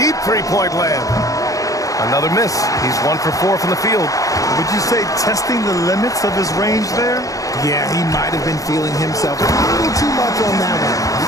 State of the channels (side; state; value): right; late; 0.17 ms